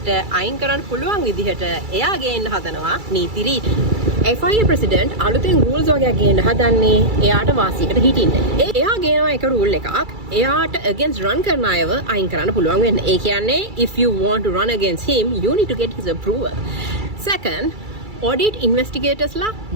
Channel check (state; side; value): late; left; 2.3 ms